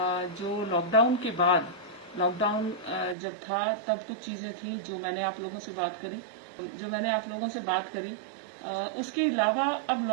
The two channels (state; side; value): drops out; left; at 3.2 s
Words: जो लॉकडाउन के बाद, लॉकडाउन जब था तब कुछ चीज़ें थी जो मैंने आप लोगों से बात करी, उसके अलावा अब